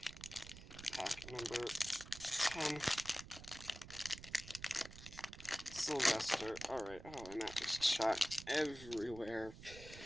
Pack number 10. Sylvester. Alright, oh, and that just shot everywhere.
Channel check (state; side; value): noise; right; rumble, 14 dB below the sound